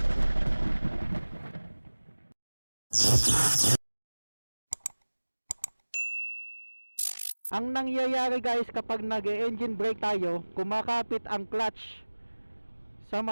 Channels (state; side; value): inverted; both; correlation -1.00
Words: Ang nangyayari guys kapag nag-e-engine brake tayo, kumakapit ang clutch sa